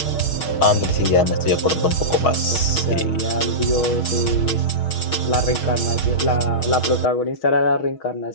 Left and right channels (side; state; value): right; late; 6.3 ms